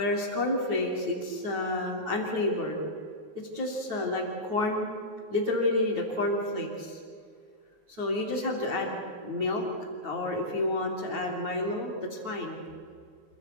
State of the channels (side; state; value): left; late; 9.3 ms